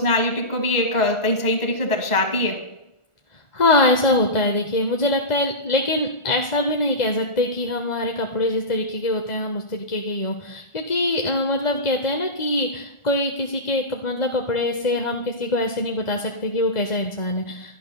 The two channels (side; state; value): right; late; 1.4 ms